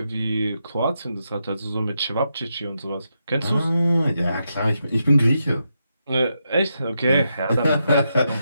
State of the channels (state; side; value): inverted; both; correlation -0.84